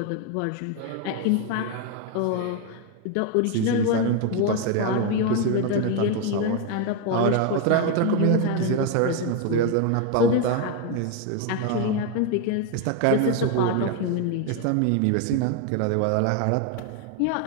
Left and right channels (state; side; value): different; both; correlation 0.01